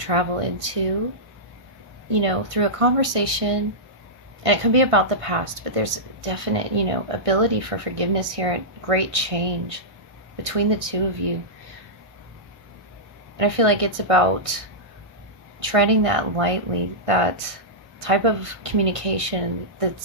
into, through a conversation. And it could be about the past, but there's definite, ability for forgiveness here, and great change between the two of you. And I feel like it's about treading that lightly, that type of communication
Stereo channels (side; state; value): left; late; 1.6 ms